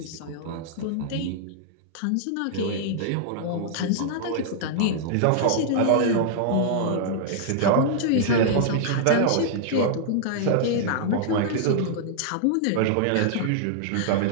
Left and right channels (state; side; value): different; both; correlation -0.01